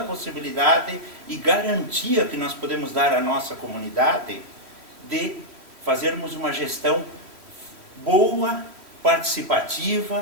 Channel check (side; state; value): left; late; 3.1 ms